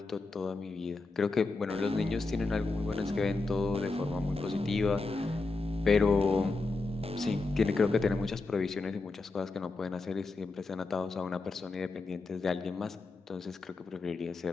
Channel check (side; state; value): right; quieter; 3.7 dB